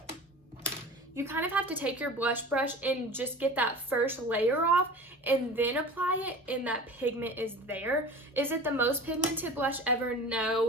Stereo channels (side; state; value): both; normal; correlation 0.37